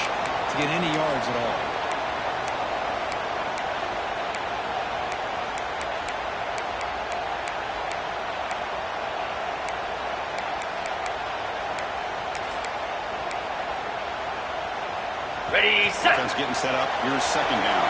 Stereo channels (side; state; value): both; identical; correlation 1.00